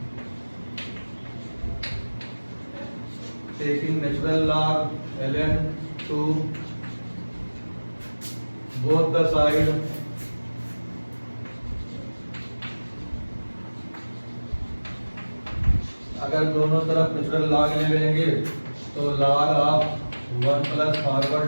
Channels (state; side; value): inverted; both; correlation -1.00